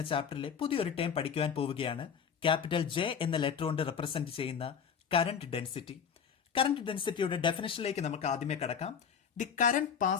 ചാപ്റ്ററിലെ പുതിയൊരു ടേം പഠിക്കുവാൻ പോവുകയാണ്. ക്യാപിറ്റൽ ജെ എന്ന ലെറ്റർ കൊണ്ട് റെപ്രസെന്റ് ചെയ്യുന്ന കറന്റ് ഡെൻസിറ്റി. കറന്റ് ഡെൻസിറ്റിയുടെ ഡെഫിനിഷനിലേക്ക് നമുക്ക് ആദ്യമേ കടക്കാം. The current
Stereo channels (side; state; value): right; quieter; 7.2 dB